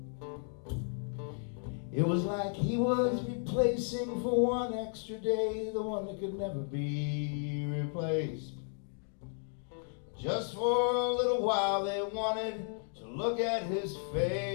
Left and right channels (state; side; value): silent; right; 55 dB below the other